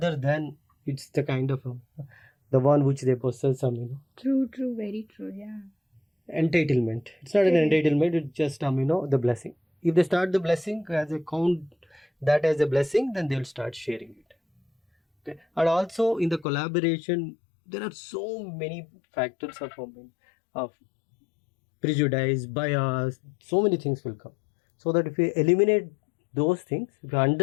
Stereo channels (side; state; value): right; drops out; at 16.4 s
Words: than it's the kind of the one which they possess True, very true. Yeah. entitlement. It's not an entitlement, it's just the blessing. If they start the blessing as a count that as a blessing, then they'll start sharing it. Okay. And also in the collaboration, there are so many factors of prejudice, bias, so many things will come. So that if we eliminate those things, if we